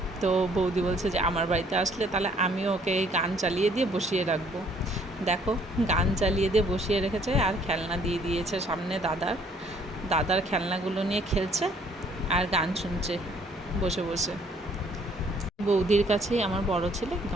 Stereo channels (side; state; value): both; normal; correlation 0.62